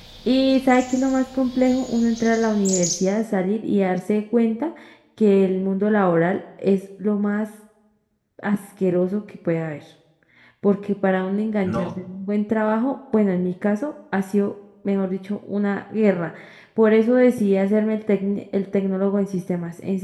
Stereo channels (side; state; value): both; identical; correlation 1.00